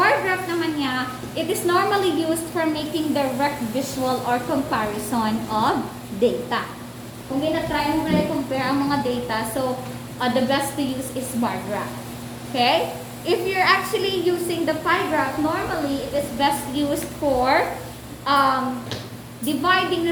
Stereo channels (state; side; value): identical; both; correlation 1.00